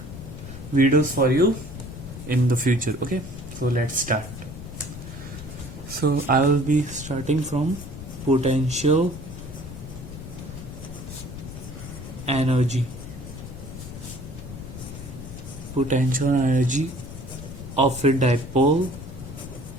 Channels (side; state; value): left; noise; rumble, 11 dB below the sound